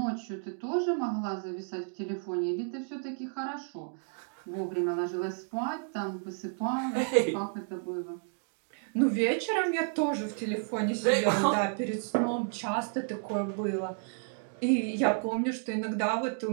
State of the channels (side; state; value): left; silent; 57 dB below the other